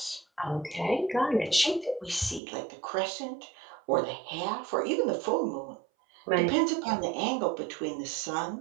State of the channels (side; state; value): left; drops out; at 2.4 s